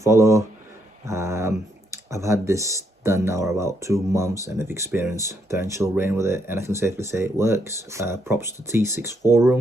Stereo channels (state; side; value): normal; both; correlation 0.75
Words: I've had this done now about 2 months and I've experienced torrential rain with it, and I can safely say it works. Props to T6